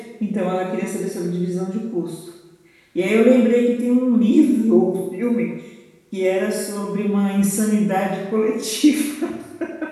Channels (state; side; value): identical; both; correlation 1.00